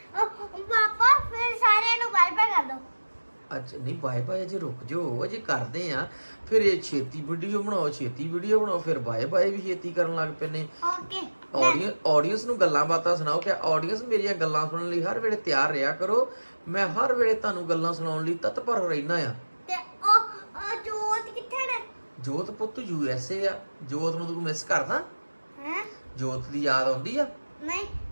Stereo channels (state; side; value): inverted; both; correlation -1.00